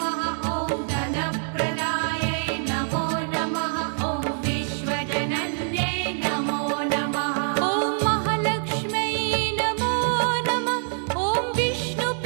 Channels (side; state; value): left; silent; digital silence